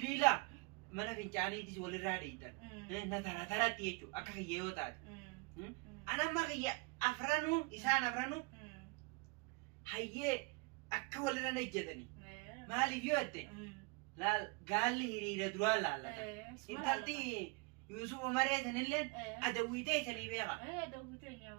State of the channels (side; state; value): left; quieter; 29.9 dB